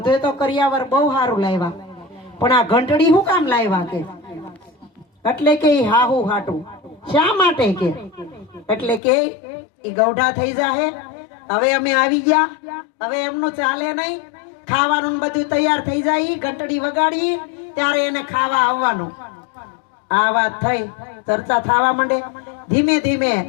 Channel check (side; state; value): right; drops out; at 9.0 s